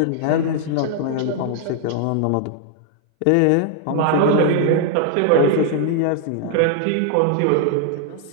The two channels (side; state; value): both; different; correlation 0.00